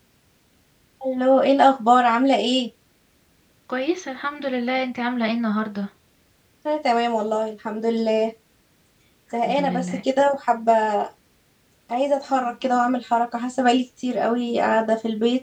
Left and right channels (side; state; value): both; identical; correlation 1.00